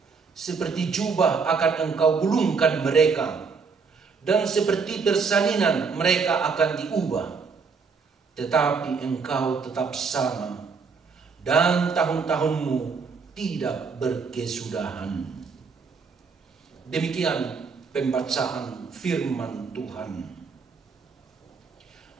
Seperti jubah akan engkau gulungkan mereka, dan seperti persalinan mereka akan diubah. Tetapi engkau tetap sama, dan tahun-tahunmu tidak berkesudahan." Demikian pembacaan firman Tuhan.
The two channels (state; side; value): quieter; left; 5.2 dB